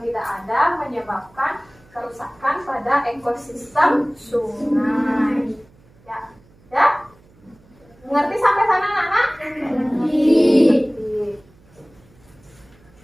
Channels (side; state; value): right; noise; hum, 29 dB below the sound